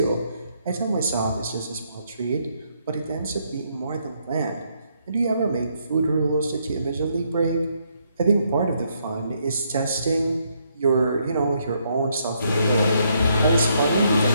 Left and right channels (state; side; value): inverted; both; correlation -0.74